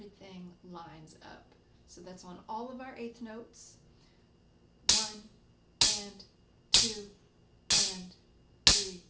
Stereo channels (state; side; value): identical; both; correlation 1.00